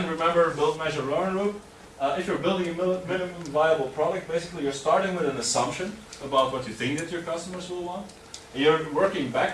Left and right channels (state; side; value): identical; both; correlation 1.00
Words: remember build, measure, learn loop. If you're building a minimum viable product, basically you're starting with an assumption about what you think that your customers will want. And you're working